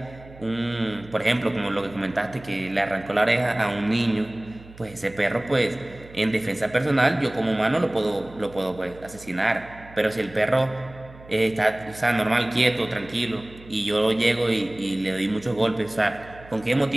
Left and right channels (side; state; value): right; noise; hum, 20 dB below the sound